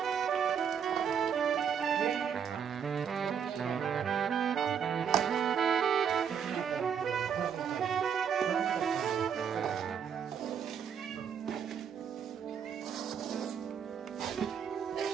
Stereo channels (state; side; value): quieter; left; 7.6 dB